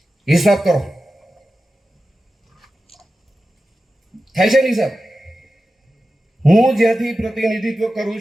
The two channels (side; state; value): both; normal; correlation 0.93